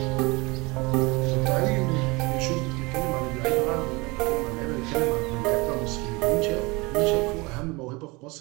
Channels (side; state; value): left; quieter; 25.0 dB